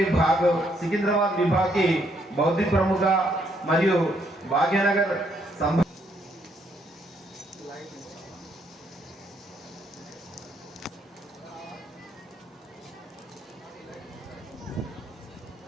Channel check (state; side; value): normal; both; correlation 0.72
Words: భాగ్ సికింద్రాబాద్ విభాగ్కి బౌద్ధిక ప్రముఖ మరియు భాగ్యనగర్